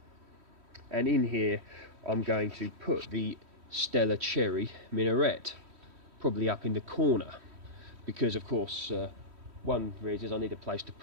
and in here I'm going to put the Stella Cherry minarette, probably up in the corner, because of course one reason is I need a place to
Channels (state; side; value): late; left; 3.1 ms